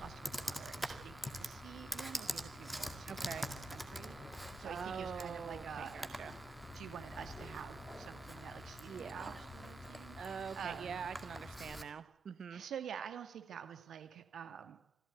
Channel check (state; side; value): quieter; left; 3.2 dB